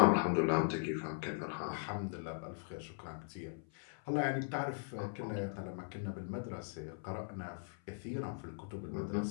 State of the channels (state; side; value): silent; right; 52 dB below the other